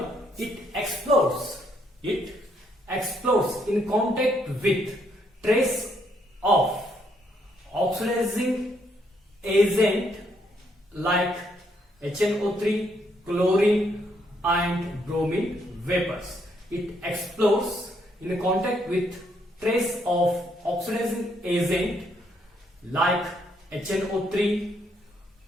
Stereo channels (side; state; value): both; normal; correlation 0.72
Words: it explodes. It explodes in contact with trace of oxidizing agent like HNO3, chlorine and bromine vapors. It explodes in contact with trace of oxidizing agent like HNO3,